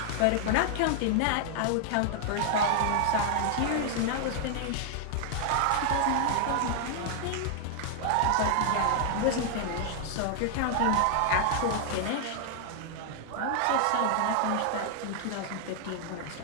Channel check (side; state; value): both; different; correlation 0.00